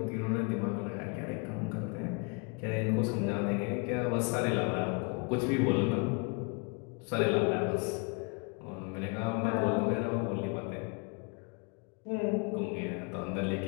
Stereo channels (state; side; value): quieter; right; 33.0 dB